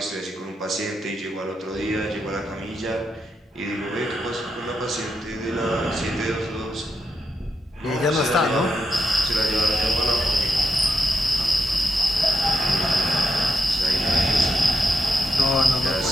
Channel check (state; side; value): normal; both; correlation 0.85